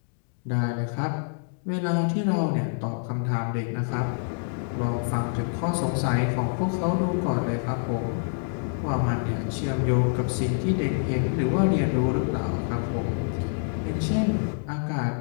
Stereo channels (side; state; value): right; silent; 61 dB below the other